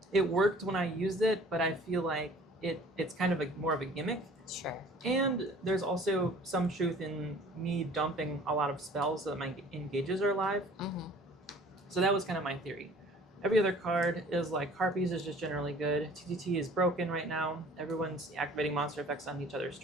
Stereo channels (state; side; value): normal; both; correlation 0.50